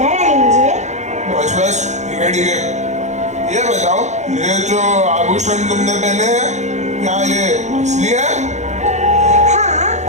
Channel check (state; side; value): late; left; 0.34 ms